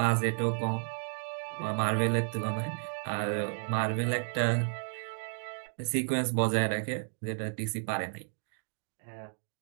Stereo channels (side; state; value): left; silent; digital silence